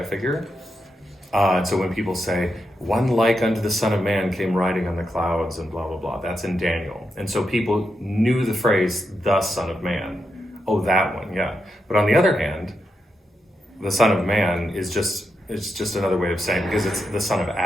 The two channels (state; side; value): normal; both; correlation 0.85